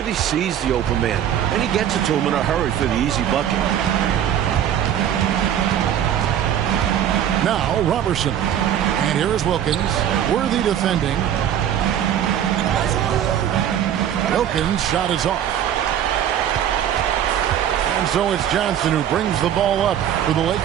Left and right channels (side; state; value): left; quieter; 10.1 dB